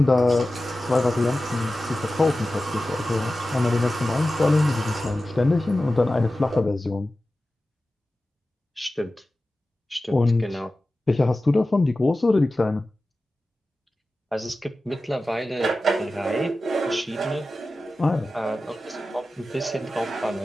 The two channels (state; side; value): normal; both; correlation 0.95